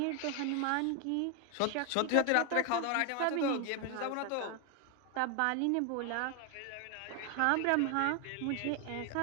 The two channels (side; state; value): both; different; correlation 0.01